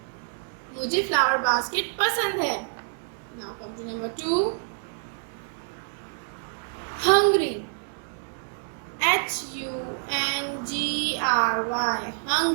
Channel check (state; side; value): silent; left; 60 dB below the other